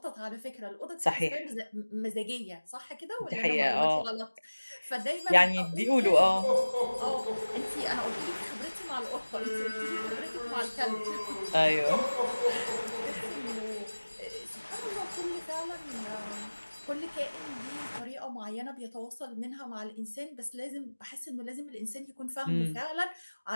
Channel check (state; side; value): inverted; both; correlation -1.00